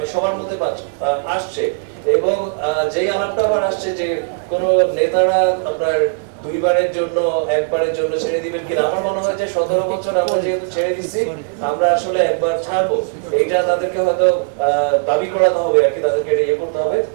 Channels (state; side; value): silent; left; digital silence